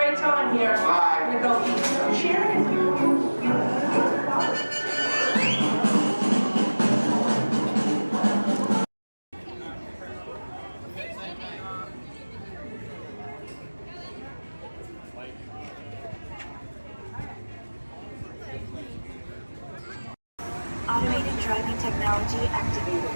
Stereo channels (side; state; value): both; inverted; correlation -1.00